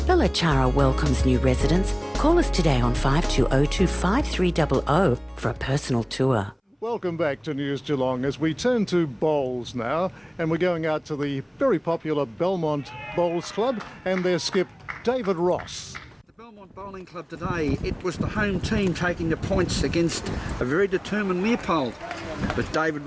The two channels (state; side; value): identical; both; correlation 1.00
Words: Belajar welcomes new residents. Call us today on 5202 5300 for a personal tour. Welcome back to News Geelong as we turn to bowls now, and we're going out to the very popular Belmont Bowls Club and their skip David Ross. The Belmont Bowling Club today, it was the home team taking the points against a very determined Leopold. But David